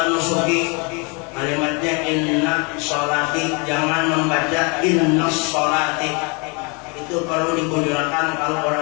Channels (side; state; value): right; quieter; 32.2 dB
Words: nusuki, kalimatnya inna sholati, jangan membaca inna sholati. Itu perlu dikujurkan kalau